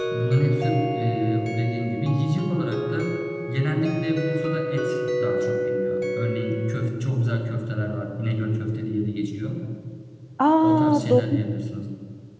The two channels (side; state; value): both; identical; correlation 1.00